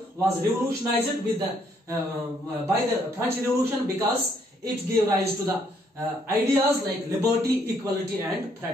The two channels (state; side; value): normal; both; correlation 0.69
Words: was revolutionized with by the French Revolution, because it gave rise to the ideas like liberty, equality and